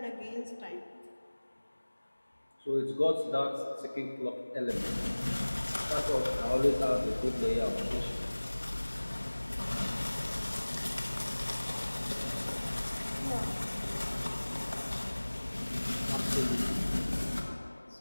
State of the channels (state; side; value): inverted; both; correlation -1.00